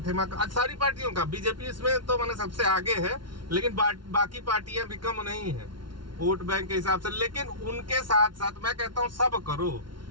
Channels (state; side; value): late; left; 0.72 ms